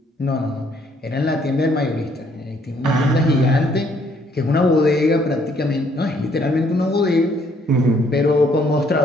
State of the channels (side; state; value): both; normal; correlation 0.66